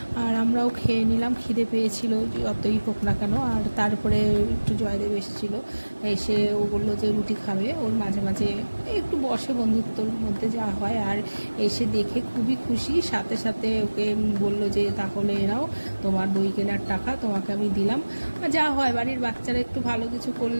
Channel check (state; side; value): inverted; both; correlation -1.00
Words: আর আমরাও খেয়ে নিলাম, খিদে পেয়েছিল যতই হোক না কেন। আর তারপরে একটু জয়দেব এসেছিলো, এসে ও বললো যে রুটি খাবে, ওর মাঝে মাঝে একটু বসে, বন্ধুত্বর মধ্যে যা হয়। আর এসে দেখে খুবই খুশি, সাথে সাথে ওকে বললো যে তাহলে এরাও তোমার বই কেনার টাকা তোমাকে আমি দিলাম। যা হয়, বাড়ির বাচ্চারা একটু ভালো কিছু